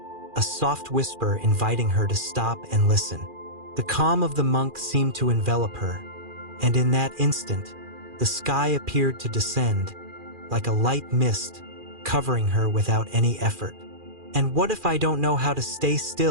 a soft whisper inviting her to stop and listen. The calm of the monk seemed to envelop her, and in that instant, the sky appeared to descend, like a light mist, covering her without any effort. "And what if I don't know how to stay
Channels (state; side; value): late; left; 2.4 ms